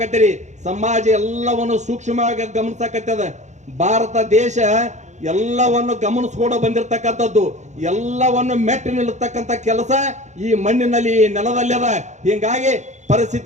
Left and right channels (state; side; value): late; left; 0.34 ms